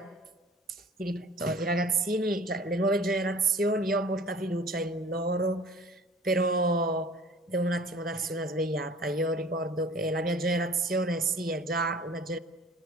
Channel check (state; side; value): normal; both; correlation 0.47